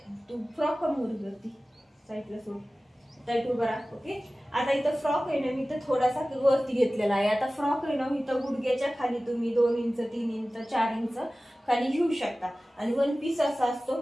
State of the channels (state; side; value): normal; both; correlation 0.97